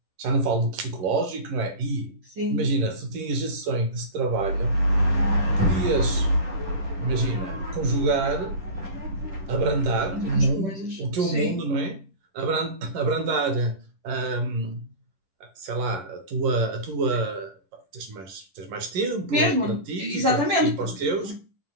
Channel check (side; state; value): left; late; 10 ms